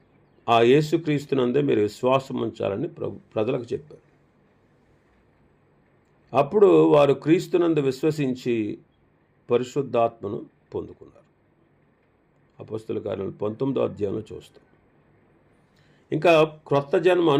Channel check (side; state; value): both; identical; correlation 1.00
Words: ఆ యేసుక్రీస్తునందే మీరు విశ్వాసం ఉంచాలని ప్రజలకు చెప్పారు. అప్పుడు వారు క్రీస్తునందు విశ్వసించి పరిశుద్ధాత్మను పొందుకున్నారు. అపొస్తలుల కార్యాలు 19వ అధ్యాయంలో చూస్తాం. ఇంకా క్రొత్త జన్మ